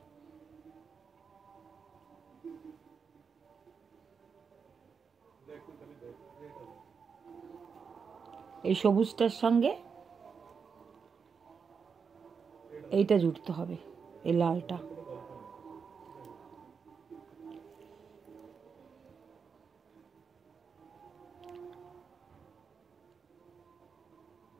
এই সবুজটার সঙ্গে এইটা জুড়তে হবে, এই লালটা।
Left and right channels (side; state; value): left; quieter; 5.9 dB